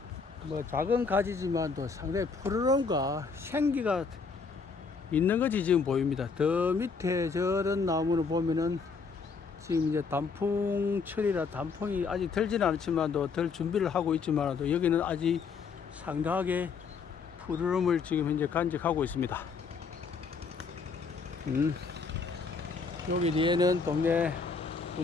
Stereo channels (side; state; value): right; quieter; 5.1 dB